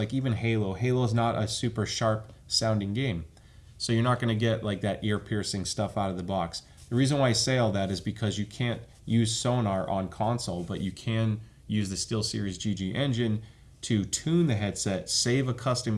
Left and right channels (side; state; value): both; identical; correlation 1.00